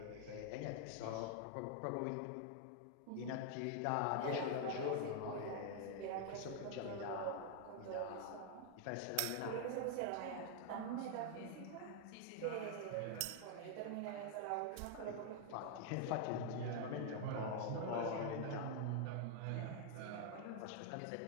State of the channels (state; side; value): different; both; correlation 0.00